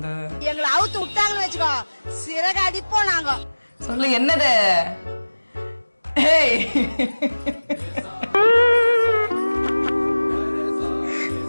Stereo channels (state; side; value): inverted; both; correlation -1.00